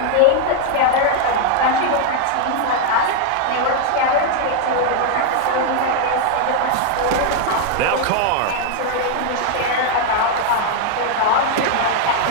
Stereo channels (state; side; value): different; both; correlation 0.00